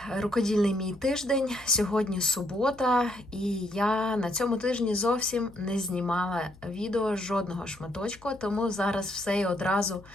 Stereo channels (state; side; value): noise; left; hum, 24 dB below the sound